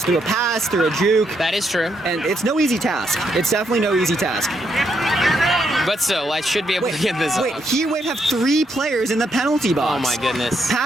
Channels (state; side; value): normal; both; correlation 0.77